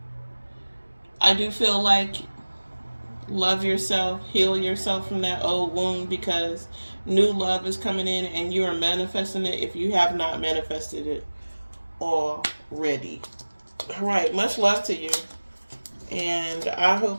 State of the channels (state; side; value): inverted; both; correlation -1.00